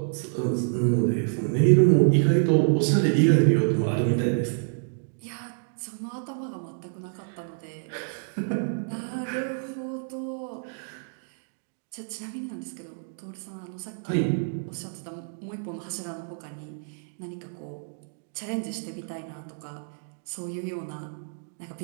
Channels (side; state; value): left; silent; digital silence